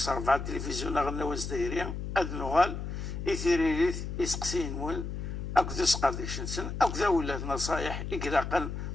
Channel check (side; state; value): left; noise; hum, 5 dB below the sound